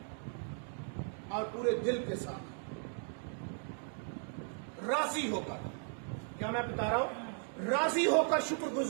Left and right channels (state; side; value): silent; left; 53 dB below the other